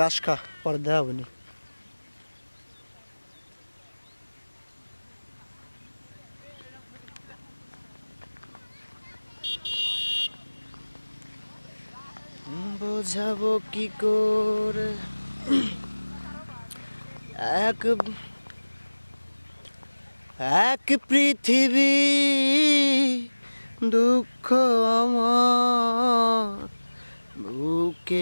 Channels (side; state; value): both; inverted; correlation -1.00